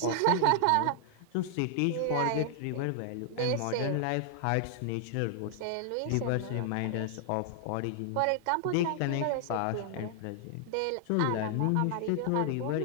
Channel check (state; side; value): different; both; correlation 0.00